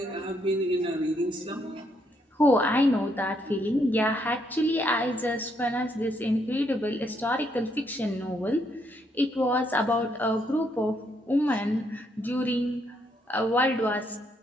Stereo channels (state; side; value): normal; both; correlation 0.74